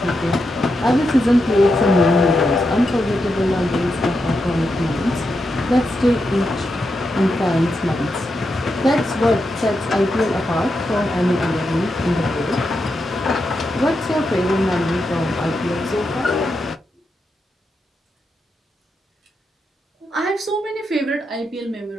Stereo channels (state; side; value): normal; both; correlation 0.85